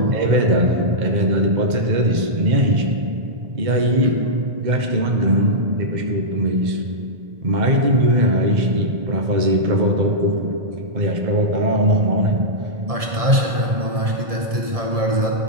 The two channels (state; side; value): late; left; 1.7 ms